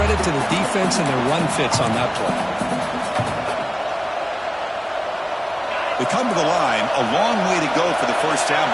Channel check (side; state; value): both; identical; correlation 1.00